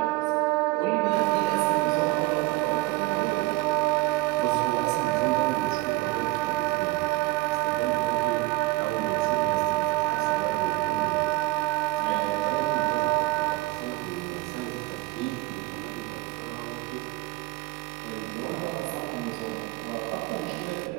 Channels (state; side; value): quieter; left; 21.4 dB